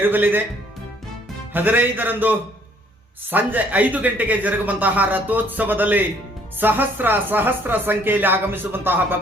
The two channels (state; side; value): normal; both; correlation 0.62